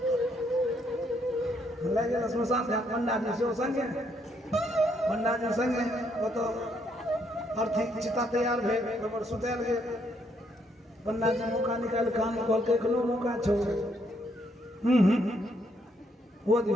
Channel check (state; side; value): normal; both; correlation 0.72